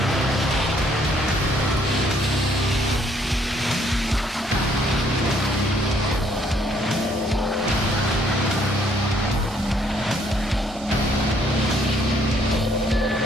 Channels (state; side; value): normal; both; correlation 0.66